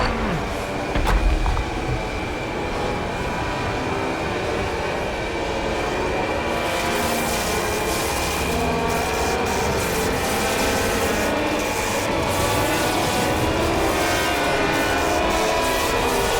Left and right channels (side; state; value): both; identical; correlation 1.00